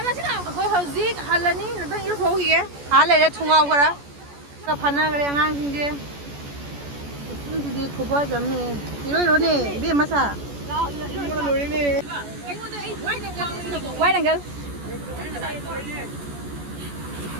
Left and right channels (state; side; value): late; left; 14 ms